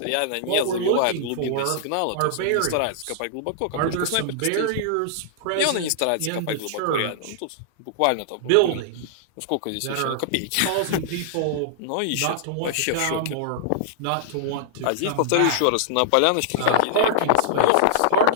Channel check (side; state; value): both; different; correlation -0.01